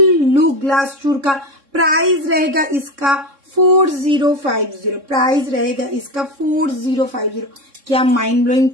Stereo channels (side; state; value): left; late; 3.6 ms